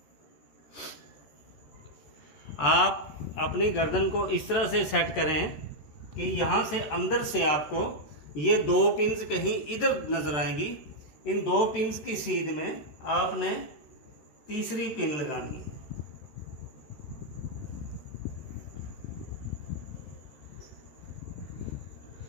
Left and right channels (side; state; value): right; late; 13 ms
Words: आप अपनी गर्दन को इस तरह से सेट करें कि यहाँ से अंदर से आपको ये 2 पिन्स कहीं इधर नज़र आएंगी। इन 2 पिन्स की सीध में आपने तीसरी पिन लगानी है।